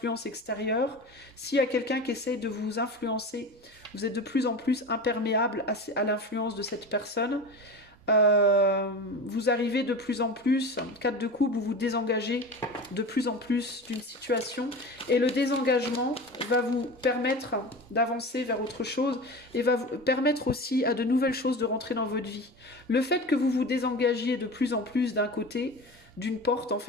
extérieures. S'il y a quelqu'un qui essaye de vous influencer, vous êtes de plus en plus imperméable à l'influence de cette personne. Vous arrivez de plus en plus, 4 de coupe, vous vous désengagez de plus en plus d'une situation et le désengagement va vous permettre d'avancer vers autre chose et va vous permettre aussi à de nouvelles choses de rentrer dans votre vie. Le fait que vous vous désengagiez de plus en plus d'un côté, d'une porte, en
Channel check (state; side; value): normal; both; correlation 0.30